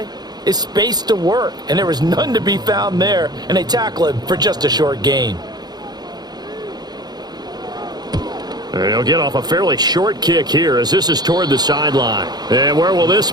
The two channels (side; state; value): left; late; 0.20 ms